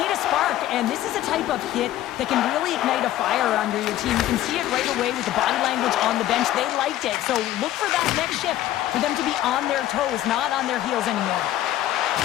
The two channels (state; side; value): quieter; right; 13.6 dB